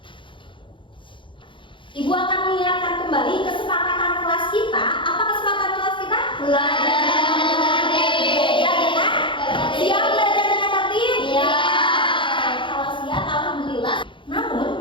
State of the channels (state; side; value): late; right; 0.24 ms